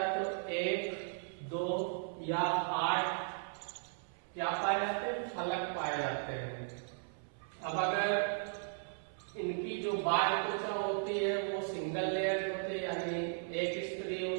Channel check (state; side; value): silent; left; 53 dB below the other